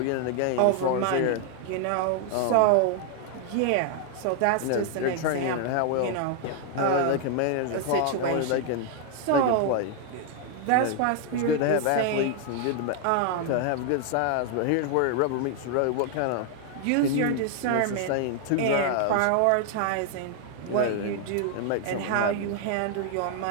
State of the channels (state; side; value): different; both; correlation 0.00